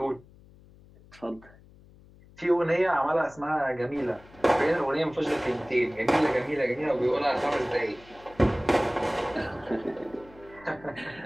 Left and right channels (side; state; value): left; noise; hum, 24 dB below the sound